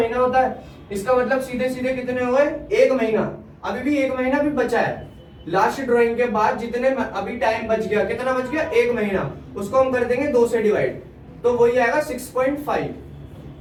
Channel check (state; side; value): identical; both; correlation 1.00